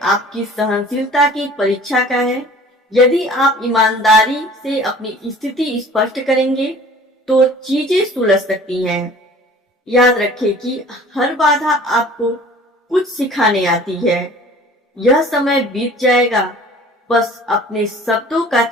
आपकी सहनशीलता की परीक्षा का है। यदि आप ईमानदारी से अपनी स्थिति स्पष्ट करेंगे तो चीजें सुलझ सकती हैं। याद रखें कि हर बाधा आपको कुछ सिखाने आती है। यह समय बीत जाएगा, बस अपने शब्दों का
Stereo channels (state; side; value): normal; both; correlation 0.47